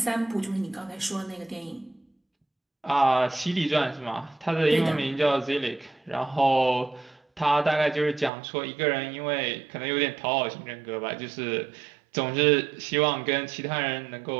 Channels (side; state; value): left; drops out; at 8.3 s